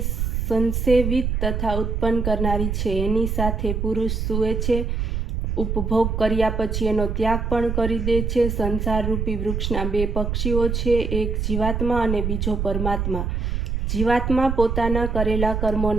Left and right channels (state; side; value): noise; right; rumble, 1 dB below the sound